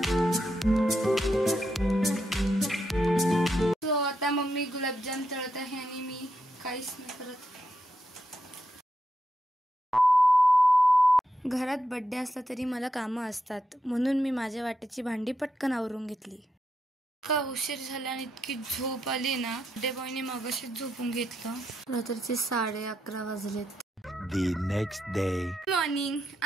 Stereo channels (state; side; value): normal; both; correlation 0.83